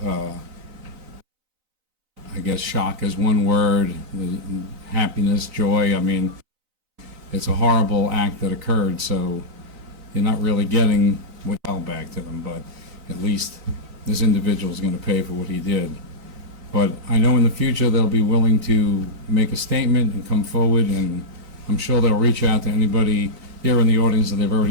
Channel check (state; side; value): late; left; 3.9 ms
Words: I guess shock is one word, happiness, joy. I mean, it's a horrible act that occurred, so you're not really getting what fell back to them, but at least this individual is going to pay for what he did. But I know in the future they'll be willing to make a statement and come forward, and I'm sure they'll reach out to anybody here in the audience that they've